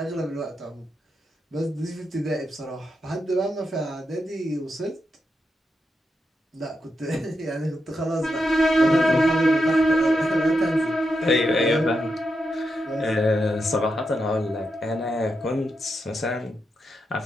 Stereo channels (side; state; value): both; normal; correlation 0.85